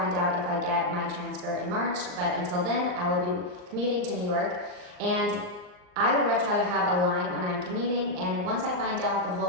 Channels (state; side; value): late; left; 39 ms